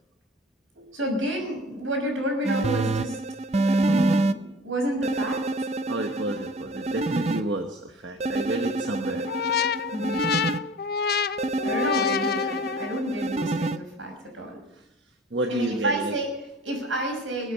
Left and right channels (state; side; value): normal; both; correlation 0.43